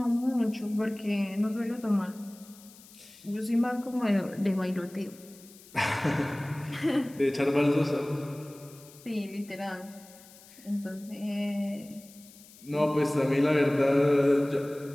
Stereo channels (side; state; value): left; noise; hiss, 22 dB below the sound